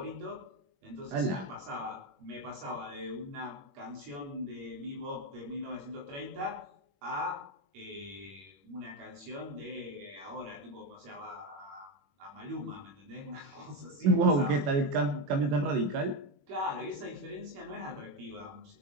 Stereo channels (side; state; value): left; late; 21 ms